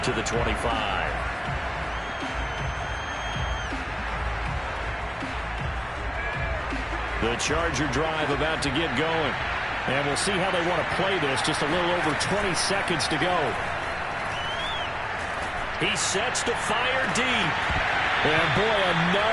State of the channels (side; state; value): both; identical; correlation 1.00